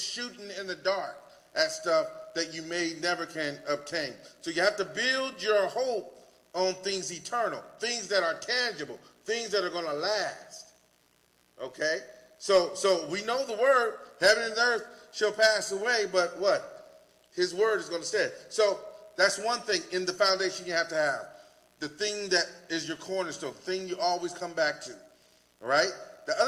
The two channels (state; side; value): identical; both; correlation 1.00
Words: in the dark at stuff that you may never can obtain. So you have to build your hope on things eternal, things that are tangible, things that are going to last. Okay? So we know the word, heaven and earth shall pass away, but what? His word is going to stay. So that's one thing in the foundation you have to have. The thing that is your cornerstone, the thing you always come back to. All right? The